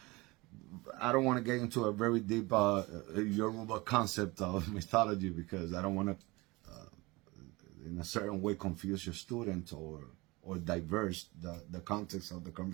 I don't want to get into a very deep Yoruba concept of mythology, because I don't want to in a certain way confuse your student or diverse the context of the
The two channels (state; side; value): quieter; left; 23.4 dB